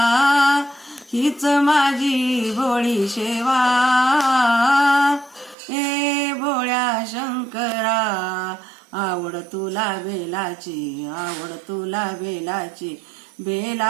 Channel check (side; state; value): left; drops out; at 5.6 s